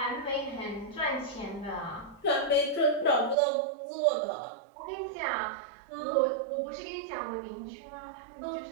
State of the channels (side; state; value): left; drops out; at 3.4 s